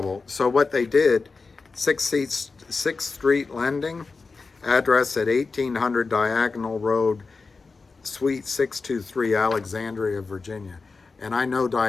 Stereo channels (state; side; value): quieter; right; 4.3 dB